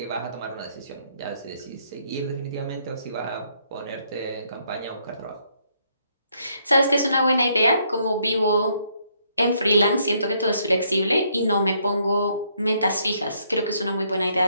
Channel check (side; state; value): both; inverted; correlation -0.71